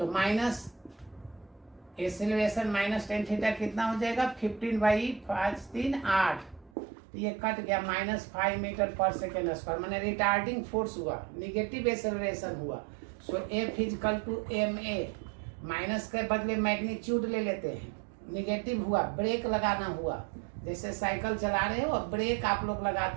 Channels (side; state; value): left; drops out; at 6.7 s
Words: माइनस एसिलरेशन -tan थीटा कितना हो जाएगा? 15/5 3 8। तो ये कट गया -5 मीटर पर सेकेंड स्क्वायर, मैंने रिटार्डिंग फोर्स हुआ, निगेटिव एसिलरेशन हुआ। So F is equal to ma, minus के बदले मैग्नीट्यूड ले लेते हैं, निगेटिव हुआ, ब्रेक लगाना हुआ। जैसे साइकिल चला रहे हो और ब्रेक आप लोग